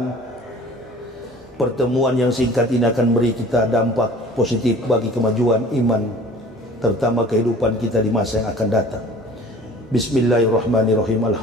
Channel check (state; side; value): normal; both; correlation 0.46